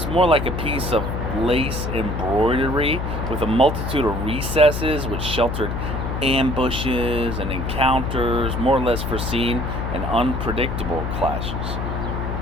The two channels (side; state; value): left; noise; hum, 3 dB below the sound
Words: more like a piece of lace embroidery with a multitude of recesses which sheltered ambushes and encounters more or less foreseen and unpredictable clashes.